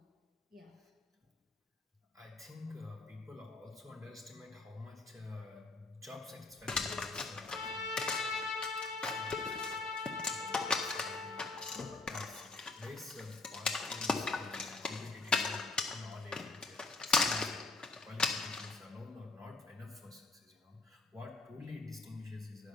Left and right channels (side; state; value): right; quieter; 3.4 dB